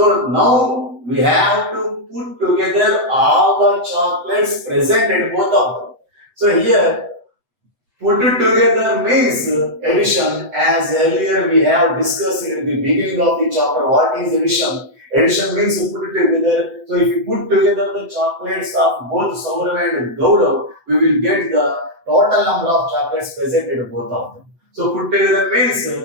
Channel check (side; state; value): left; late; 7.6 ms